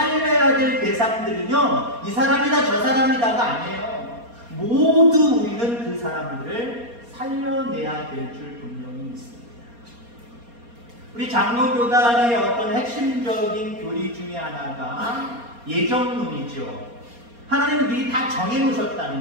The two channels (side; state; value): left; late; 4.3 ms